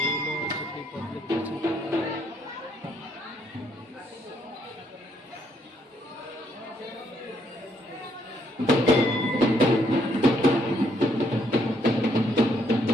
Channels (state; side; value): normal; both; correlation 0.71